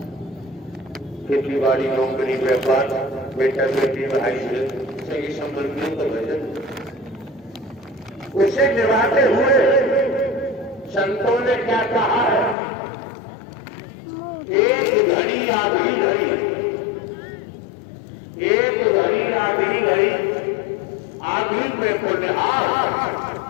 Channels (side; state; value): right; drops out; at 12.6 s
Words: खेती बाड़ी नौकरी व्यापार बेटा बेटी भाई सही संबंधियों का वजन उसे निभाते हुए संतों ने क्या कहा है, एक घड़ी आधी घड़ी, एक घड़ी आधी घड़ी, आधी में को निहार